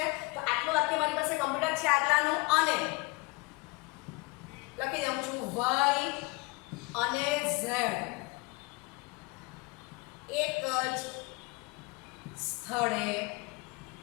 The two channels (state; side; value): quieter; right; 26.5 dB